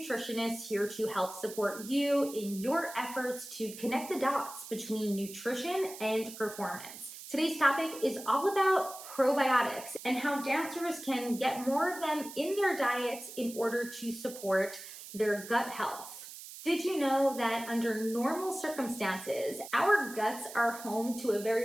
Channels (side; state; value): right; noise; hiss, 13 dB below the sound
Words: here to help support you in your efforts to connect the dots between nutrition and performance. Today's topic is all about probiotics and how dancers can get more of them in their diets in order to support their gut health. Did you know that under normal circumstances, our guts are home to a